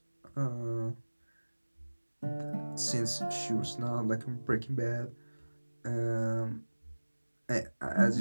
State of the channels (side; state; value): both; inverted; correlation -1.00